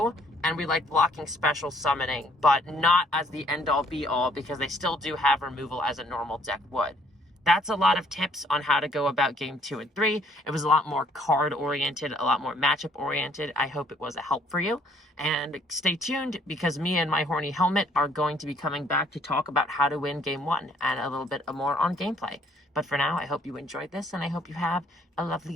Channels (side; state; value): both; normal; correlation 0.63